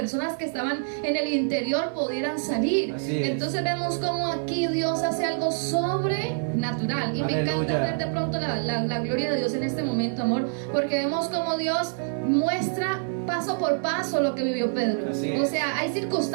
que estaban en el interior pudieran salir. Entonces vemos como aquí Dios hace algo sobrenatural. Y me encanta ver de pronto la gloria de Dios en este momento, amor, porque vemos como Dios muestra paso por paso lo que vivió Pedro. O sea, hay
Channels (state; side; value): silent; left; 61 dB below the other